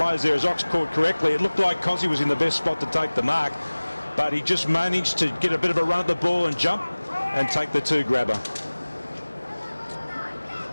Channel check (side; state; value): both; inverted; correlation -1.00